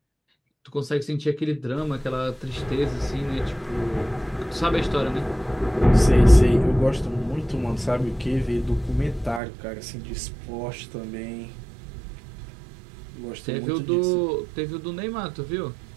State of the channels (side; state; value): left; drops out; at 9.4 s